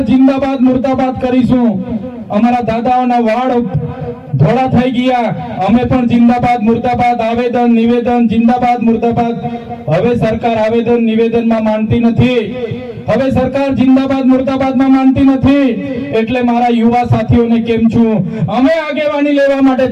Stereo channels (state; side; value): identical; both; correlation 1.00